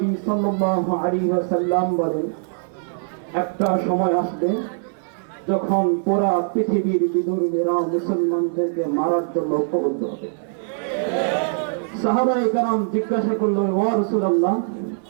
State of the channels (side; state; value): left; silent; digital silence